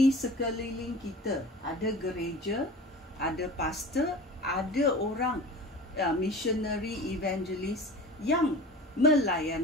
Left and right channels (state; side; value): normal; both; correlation 0.37